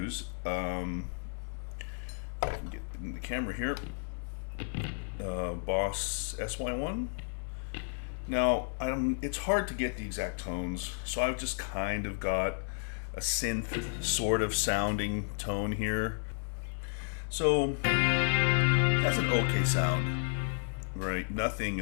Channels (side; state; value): right; silent; digital silence